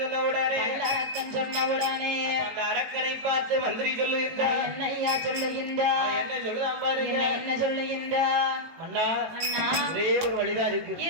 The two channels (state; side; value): late; left; 18 ms